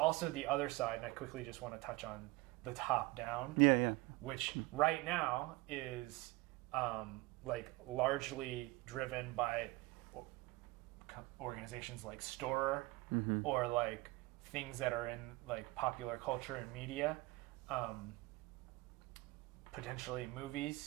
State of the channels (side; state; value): left; quieter; 21.4 dB